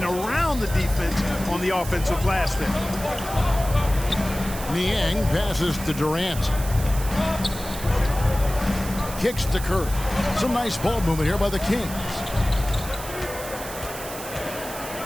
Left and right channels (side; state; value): right; noise; hiss, 11 dB below the sound